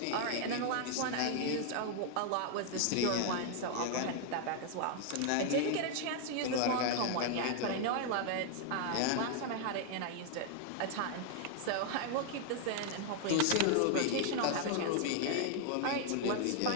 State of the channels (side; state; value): both; different; correlation 0.00